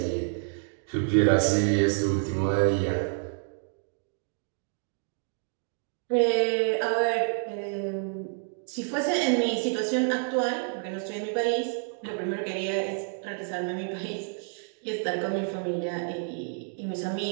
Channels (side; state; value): left; silent; 59 dB below the other